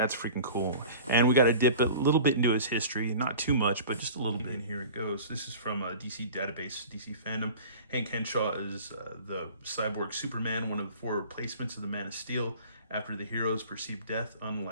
freaking cool. And we got to dip a little bit into his history. Not too much, but just a little bit. And here it goes. This is from DC Database, DC Fandom. Hank Henshaw is the Cyborg Superman, one of the four replacements of the Man of Steel. After the hero's perceived death,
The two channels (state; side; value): inverted; both; correlation -0.41